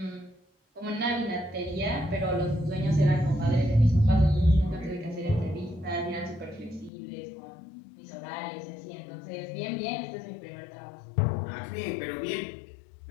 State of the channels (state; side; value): drops out; right; at 6.9 s